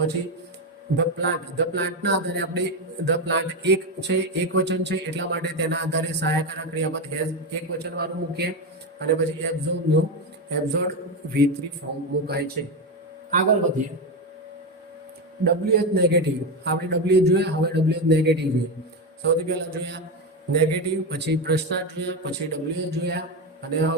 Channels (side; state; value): both; normal; correlation 0.13